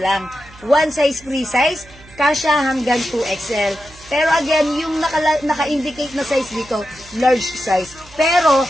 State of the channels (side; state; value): right; noise; hum, 23 dB below the sound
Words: One size, free size, kasya hanggang 2XL. Pero again, yung naka-indicate na size dito, large size. Pero,